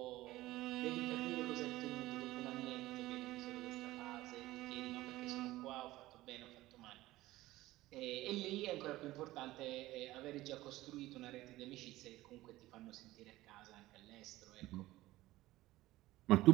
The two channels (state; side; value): quieter; left; 17.3 dB